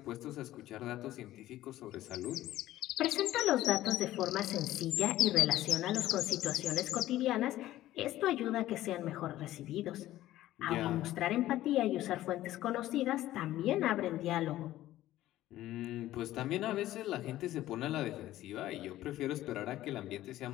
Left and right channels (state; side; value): quieter; right; 14.7 dB